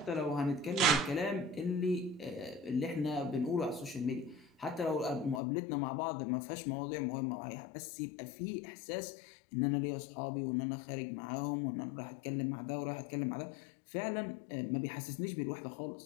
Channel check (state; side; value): drops out; right; at 5.4 s